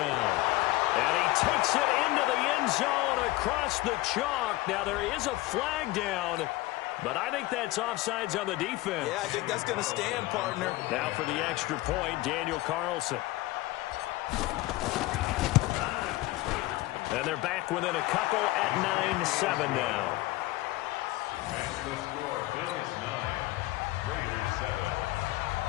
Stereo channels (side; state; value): right; quieter; 18.8 dB